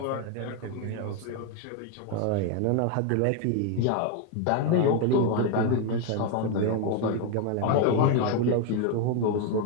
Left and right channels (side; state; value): both; different; correlation 0.01